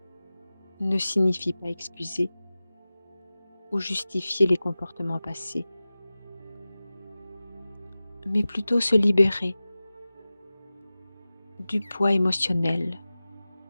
ne signifie pas excuser ou justifier les comportements passés, mais plutôt se libérer du poids émotionnel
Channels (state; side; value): inverted; both; correlation -0.97